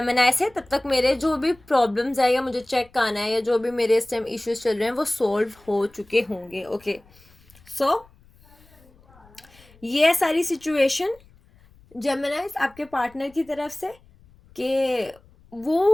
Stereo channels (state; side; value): noise; left; rumble, 28 dB below the sound